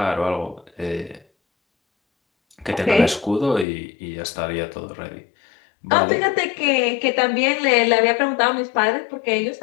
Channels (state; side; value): drops out; right; at 3.7 s